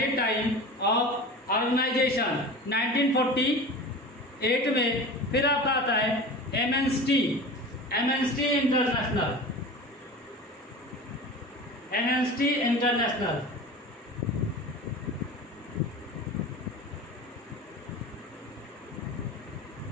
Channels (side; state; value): both; normal; correlation 0.34